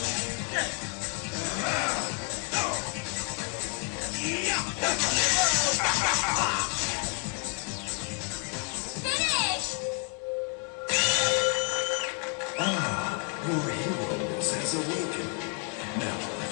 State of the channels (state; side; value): quieter; right; 36.2 dB